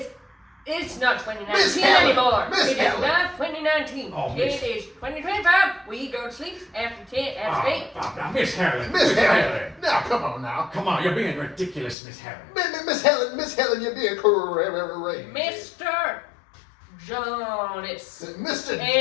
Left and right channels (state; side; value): drops out; right; at 12.0 s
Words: It's not 2019 Miss Helen, anymore. Miss It is Helen. not 2019. Oh, It Miss- is 2025. We go to sleep after 10, after 8. Now, Miss Helen. Miss Helen. Now, come on now. Come on, you're being ridiculous, Miss Helen. Miss Helen, you're being crazy. Mr. Jonas Mr.